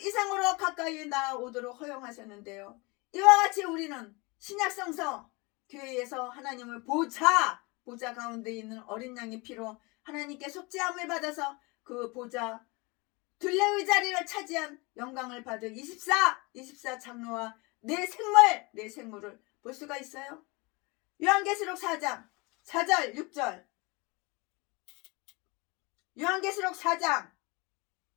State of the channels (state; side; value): quieter; right; 26.7 dB